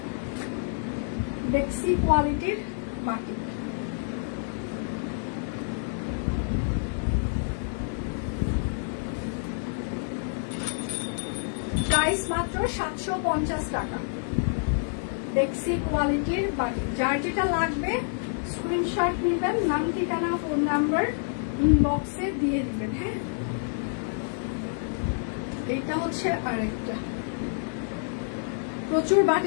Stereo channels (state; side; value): silent; right; digital silence